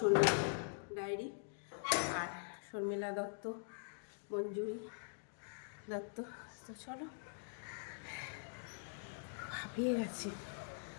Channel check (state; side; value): silent; right; digital silence